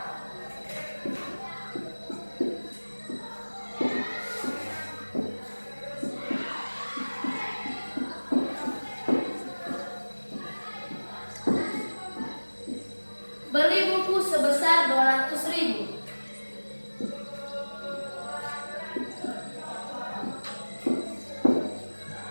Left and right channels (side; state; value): both; inverted; correlation -1.00